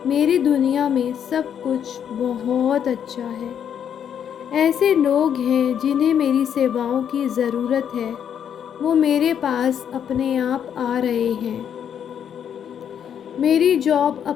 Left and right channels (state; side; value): quieter; right; 8.7 dB